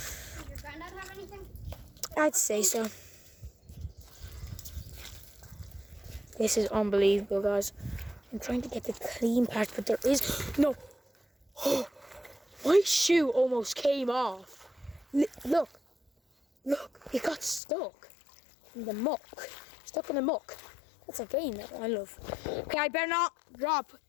your granddad have anything? I'd say so. This is unbelievable, guys. I'm trying to get the clean part, but there is no. Oh, my shoe almost came off. Look, it got stuck in the muck. Stuck in the muck. That's a game that I love. Okay, I better not drop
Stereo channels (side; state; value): right; drops out; at 17.6 s